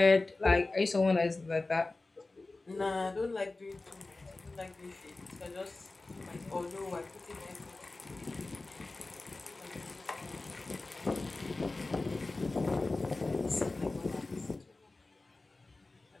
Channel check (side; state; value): right; quieter; 3.3 dB